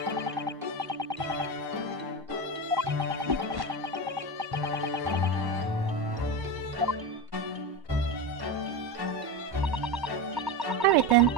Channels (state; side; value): late; left; 1.1 ms